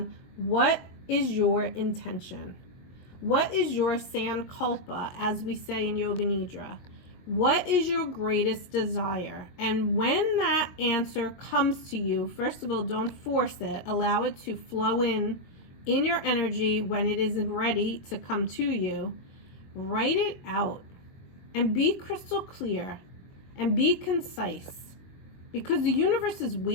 what is your intention? What is your sankalpa, as we say in Yoga Nidra? What is your greatest desire? And when that answer comes to you, first of all, don't force it. Allow it to flow in your energy when it is ready to come to you. Write it out and be crystal clear and be concise, because the universe is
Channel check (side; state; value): right; late; 22 ms